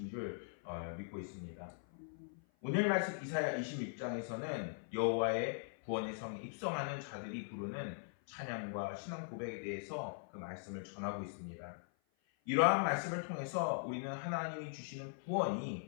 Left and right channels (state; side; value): silent; right; 51 dB below the other